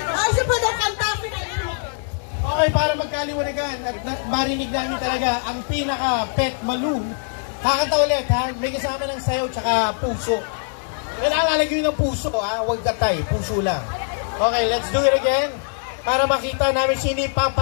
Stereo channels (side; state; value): right; silent; 61 dB below the other